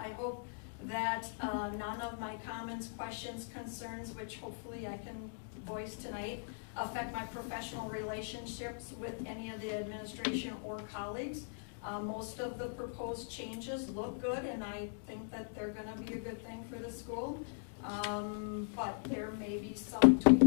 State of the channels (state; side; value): silent; right; digital silence